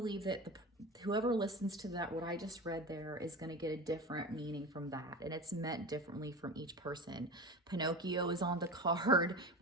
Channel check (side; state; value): both; normal; correlation 0.30